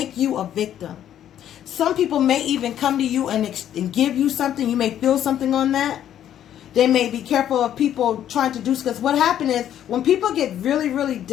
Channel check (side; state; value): right; quieter; 10.7 dB